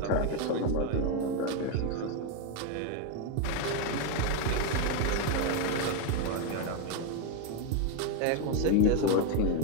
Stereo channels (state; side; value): different; both; correlation 0.01